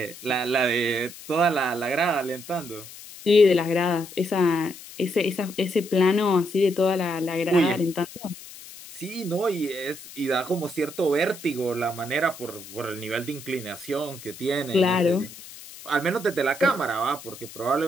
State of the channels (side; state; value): left; noise; hiss, 16 dB below the sound